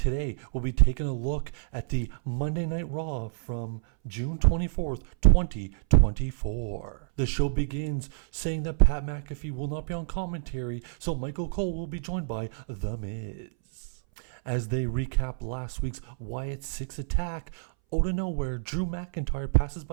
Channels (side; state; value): left; silent; 59 dB below the other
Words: we'll be taking a look at the Monday Night Raw from June 24th, 2024. The show begins saying that Pat McAfee will not be on commentary, so Michael Cole will be joined by The Miz. As they recap last week's Wyatt 6 attack, out of nowhere, Drew McIntyre passes